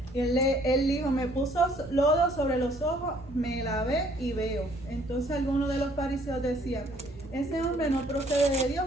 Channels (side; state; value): both; normal; correlation 0.61